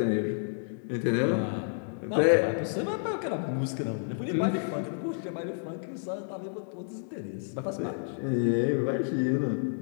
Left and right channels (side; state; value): right; silent; digital silence